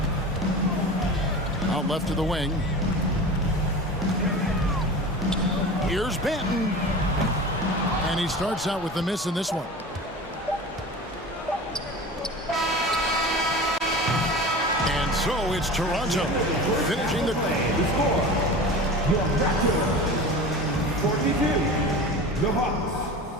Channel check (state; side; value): normal; both; correlation 0.33